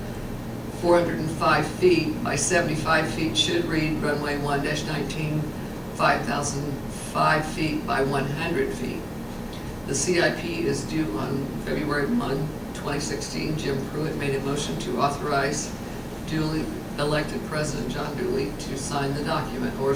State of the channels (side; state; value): both; identical; correlation 1.00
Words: feet by 75 feet should read runway 1-19, 5,005 feet by 100 feet. The CIP is due on February 1, 2016. Jim Pruitt made a motion to authorize elected President John Dooley to sign the document.